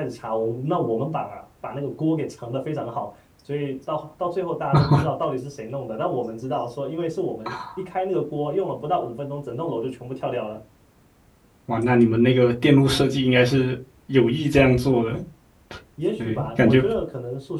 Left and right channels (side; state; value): both; identical; correlation 1.00